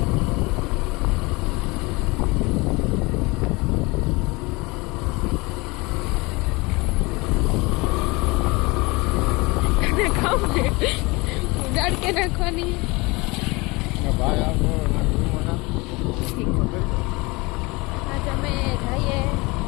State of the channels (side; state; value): right; quieter; 24.9 dB